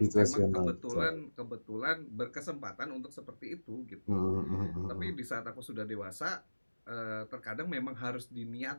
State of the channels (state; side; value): inverted; both; correlation -1.00